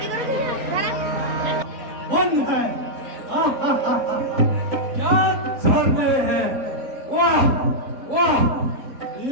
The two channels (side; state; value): left; late; 3.9 ms